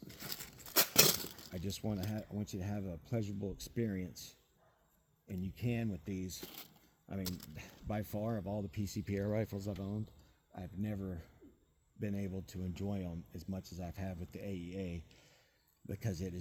I just want you to have a pleasurable experience, and you can with these. I mean, by far, of all the PCP air rifles I've owned, I've never been able to enjoy them as much as I've had with the AEA, because it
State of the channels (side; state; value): both; identical; correlation 1.00